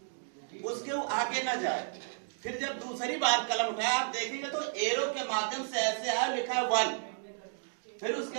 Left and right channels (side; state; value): left; silent; digital silence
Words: उसके आगे न जाए। फिर जब दूसरी बार कलम उठाया, आप देखेंगे तो एरो के माध्यम से ऐसे है, लिखा है 1। फिर